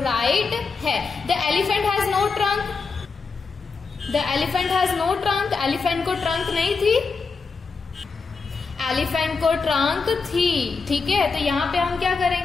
है. The elephant has no trunk. The elephant has no trunk. Elephant को ट्रंक नहीं थी, एलिफेंट को ट्रंक थी, ठीक है. तो यहाँ पे हम क्या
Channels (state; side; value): quieter; right; 4.7 dB